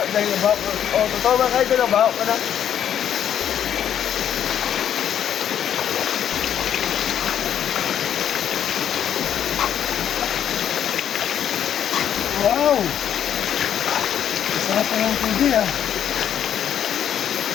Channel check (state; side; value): quieter; right; 9.7 dB